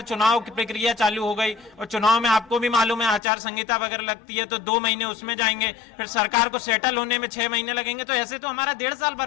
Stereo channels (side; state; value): right; drops out; at 3.2 s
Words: चुनाव की प्रक्रिया चालू हो गई और चुनाव में आपको भी मालूम है आचार संहिता वगैरह लगती है, तो 2 महीने उसमें जाएंगे, फिर सरकार को सेटल होने में 6 महीने लगेंगे, तो ऐसे तो हमारा 1.5 साल